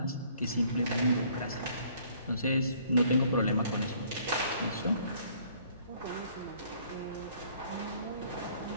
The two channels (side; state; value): both; inverted; correlation -0.60